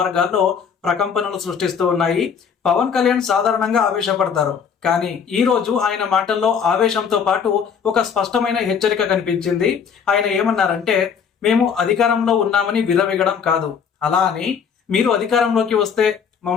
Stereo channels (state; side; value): quieter; right; 6.9 dB